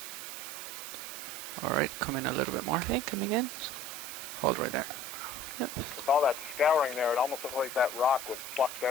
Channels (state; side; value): noise; right; hiss, 9 dB below the sound